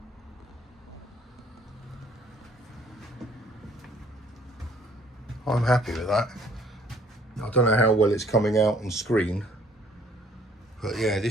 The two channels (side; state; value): both; normal; correlation 0.59